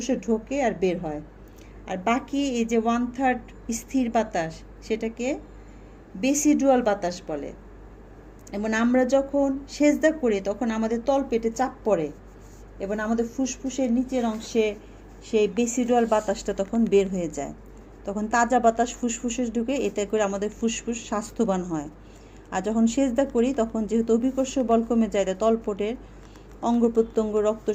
ঢোকে আর বের হয়। আর বাকি এই যে 1/3 স্থির বাতাস, সেটাকে বেসিডুয়াল বাতাস বলে। এবং আমরা যখন সেজদা করি তখন আমাদের তলপেটে চাপ পড়ে এবং আমাদের ফুসফুসের নিচের অংশে সেই বেসিডুয়াল বাতাসটা তখন বের হয়ে যায়। তখন তাজা বাতাস ফুসফুসে ঢুকে, এতে করে আমাদের ফুসফুস স্বাস্থ্যবান হয়। আর যখন সেজদা করি তখন যেহেতু অভিকর্ষ বল কমে যায়, তলপেটের অঙ্গ প্রত্যঙ্গ রক্ত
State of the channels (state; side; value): identical; both; correlation 1.00